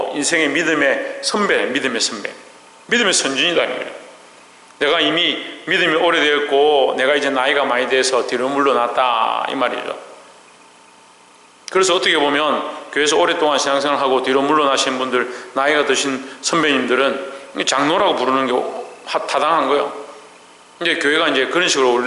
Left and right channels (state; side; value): identical; both; correlation 1.00